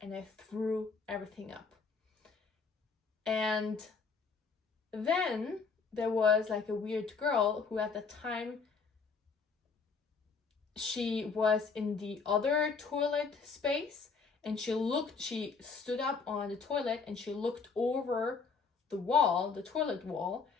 and I threw everything up. And then there was like a weird girl who at the time, she was in the other toilet space, and she stood up on the toilet and she looked over the toilet wall,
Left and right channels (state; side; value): quieter; right; 5.0 dB